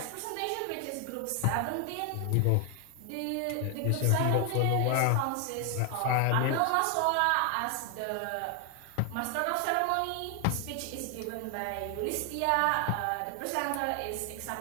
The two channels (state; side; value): different; both; correlation 0.00